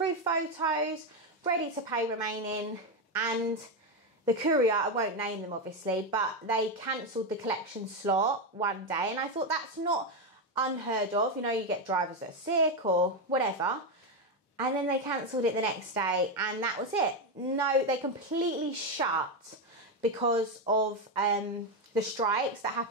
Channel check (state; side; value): normal; both; correlation 0.09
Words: photos, ready to pay remaining, and the courier, I won't name them obviously, but they cancelled the collection slot one day, and I thought that's not unheard of. You know, you get drivers that are sick or whatever. And then they cancelled it the next day, and that was it. No, they completely shut because of the strikes that